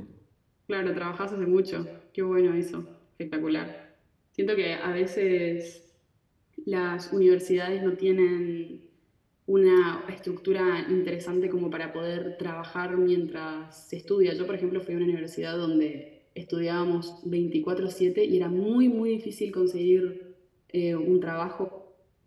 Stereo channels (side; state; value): both; identical; correlation 1.00